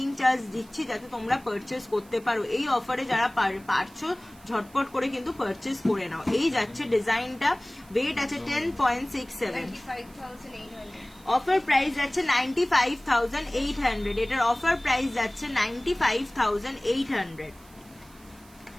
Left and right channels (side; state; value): right; noise; hiss, 25 dB below the sound